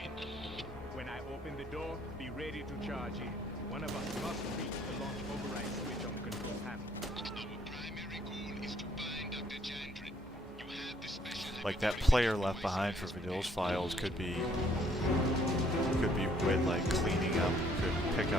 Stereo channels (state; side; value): normal; both; correlation 0.65